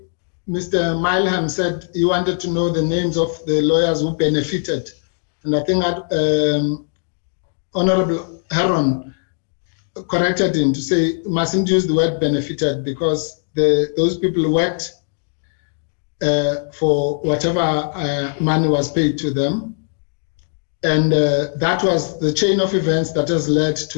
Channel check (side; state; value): right; silent; digital silence